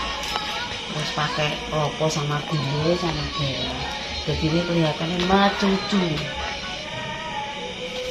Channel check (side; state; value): both; identical; correlation 1.00